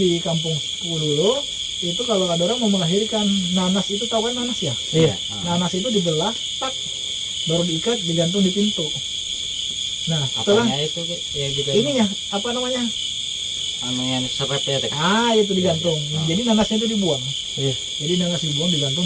kampungku dulu, itu kalau ada orang mau melahirkan, nanas itu, tahu kan nanas ya? Iya. Nanas itu dibelah, tak, baru diikat, digantung di pintu. Nah, setelah itu ya gitu. Ininya apa namanya? Yang serepnya teh. Itu digantung. Jadi nanasnya itu dibuang. Iya. Jadi nanas dibuang, digantung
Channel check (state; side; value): identical; both; correlation 1.00